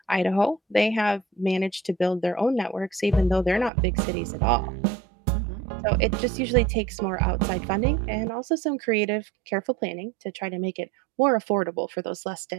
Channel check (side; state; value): left; drops out; at 3.7 s